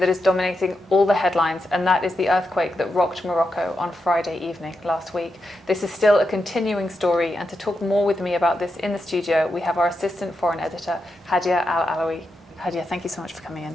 is dominating all the headlines, and that is the earthquake that rocked Morocco on Friday evening last week. This is still a continuing story, and to talk more with me about this in the studio we have our assistant foreign editor, Hadya Al Alawi. Hadya, thank you so much for coming in.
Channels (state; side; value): normal; both; correlation 0.86